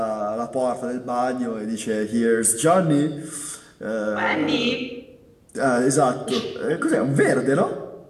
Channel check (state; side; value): identical; both; correlation 1.00